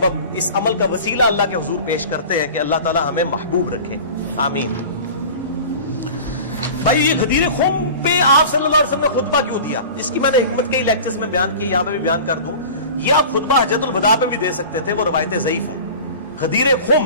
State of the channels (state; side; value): inverted; both; correlation -0.38